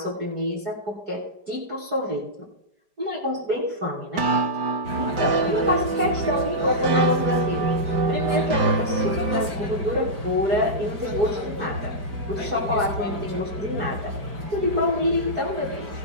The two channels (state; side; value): late; left; 4.9 ms